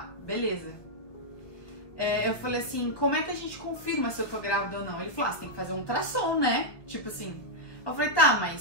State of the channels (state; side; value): late; right; 1.5 ms